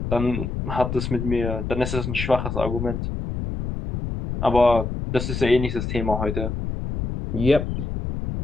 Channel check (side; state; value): left; noise; rumble, 4 dB below the sound